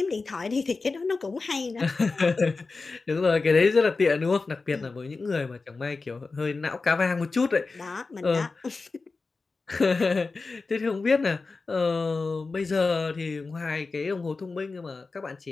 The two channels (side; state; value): right; quieter; 4.0 dB